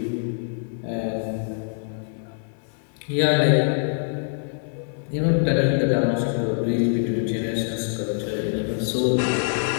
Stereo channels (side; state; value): right; silent; 62 dB below the other